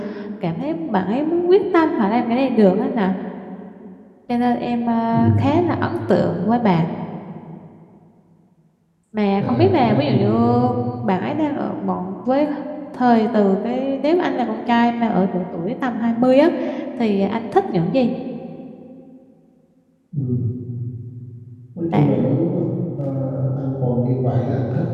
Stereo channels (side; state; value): both; identical; correlation 1.00